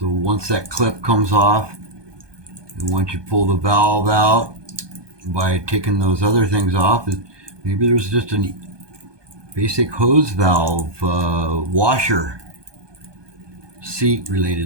once that clip comes off, and once you pull the valve out by taking those other things off, maybe there's just a basic hose valve washer seat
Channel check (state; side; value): late; left; 1.2 ms